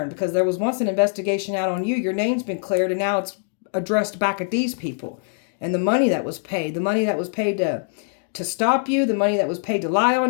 because there was once an investigation out on you, your name's been cleared and now it's addressed back at these people. And the money that was paid to stop you, the money that was paid to lie on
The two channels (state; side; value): silent; right; 64 dB below the other